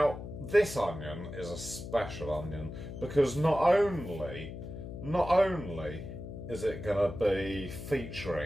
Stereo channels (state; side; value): noise; left; hum, 9 dB below the sound